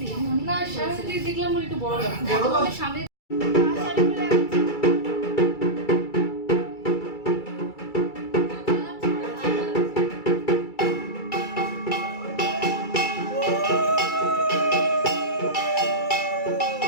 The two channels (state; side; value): late; right; 2.3 ms